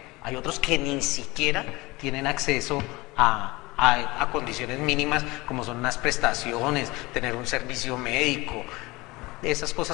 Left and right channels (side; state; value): right; quieter; 22.2 dB